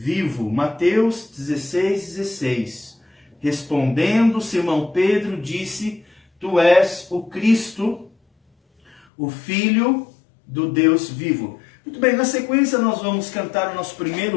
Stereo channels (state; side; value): drops out; right; at 9.0 s